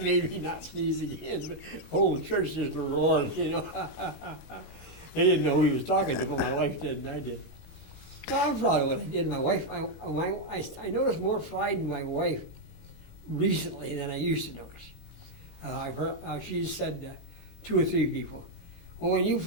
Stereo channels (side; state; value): right; late; 19 ms